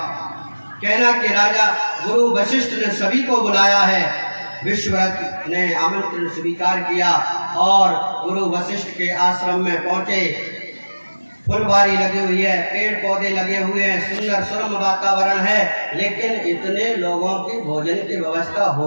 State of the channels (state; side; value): inverted; both; correlation -1.00